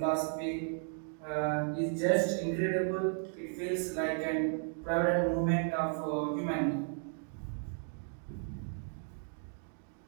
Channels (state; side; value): silent; left; 55 dB below the other